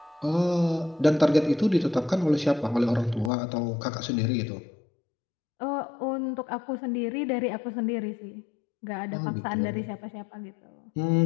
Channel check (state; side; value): drops out; right; at 3.3 s